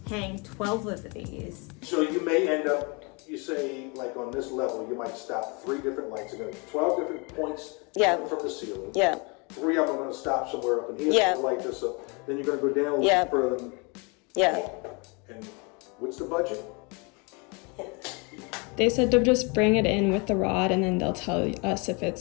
hang 12 of these. So you may end up, you say, like on this level, you might stop 3 different lights. You're going to 12 different points from the ceiling. Yeah. 3 of them are going to stop somewhere up in here Yeah. to light this up. Then you're going to go down a Yeah. little further. Yeah. And what's the budget? They said to just bring it in with the rod and then they'll tell us if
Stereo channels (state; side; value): quieter; right; 31.3 dB